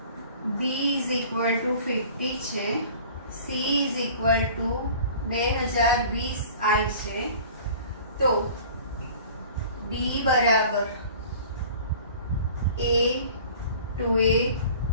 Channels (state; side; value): inverted; both; correlation -0.45